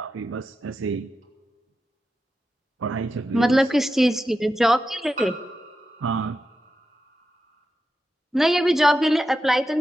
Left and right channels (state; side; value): normal; both; correlation 0.89